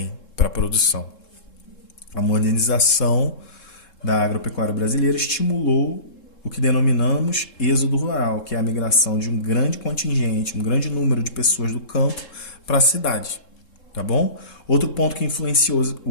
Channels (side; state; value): right; late; 3.7 ms